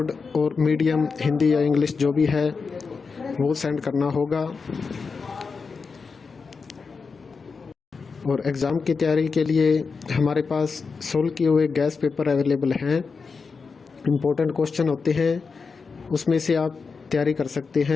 और मीडियम हिंदी या इंग्लिश जो भी है वो सेंड करना होगा। और एग्ज़ाम की तैयारी के लिए हमारे पास सोल्व किए हुए गैस पेपर अवेलेबल हैं। इम्पोर्टेंट क्वेश्चन होते हैं, उसमें से आप तैयारी कर सकते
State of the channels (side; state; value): right; quieter; 5.0 dB